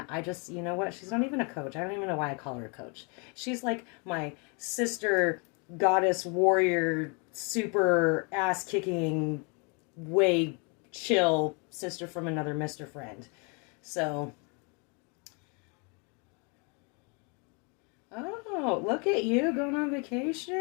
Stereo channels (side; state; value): right; quieter; 34.3 dB